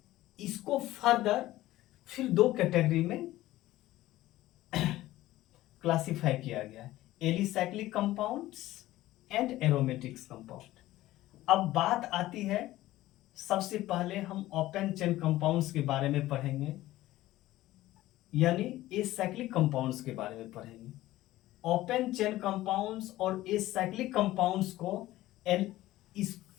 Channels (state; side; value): quieter; right; 16.0 dB